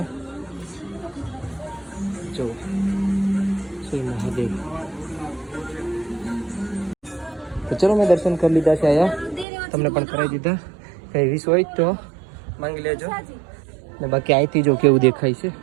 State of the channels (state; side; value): drops out; left; at 9.5 s